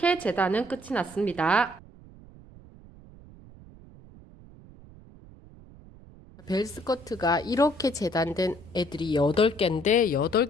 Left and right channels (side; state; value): right; noise; rumble, 21 dB below the sound